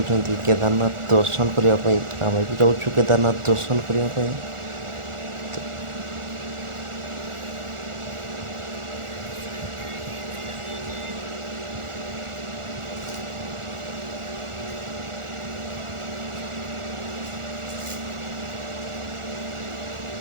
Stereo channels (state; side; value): late; left; 1.4 ms